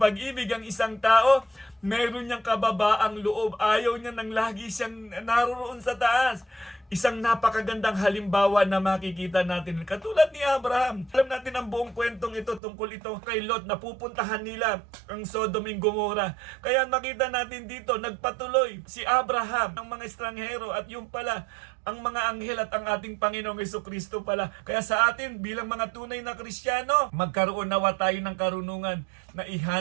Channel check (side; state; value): left; drops out; at 12.6 s